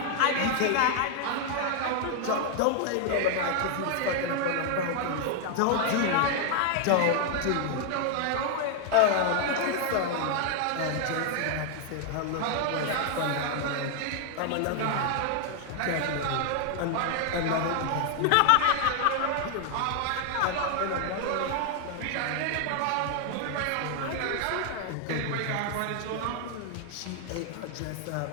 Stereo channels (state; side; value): different; both; correlation 0.00